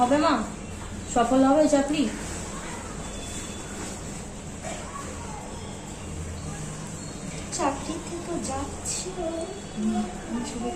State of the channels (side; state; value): both; identical; correlation 1.00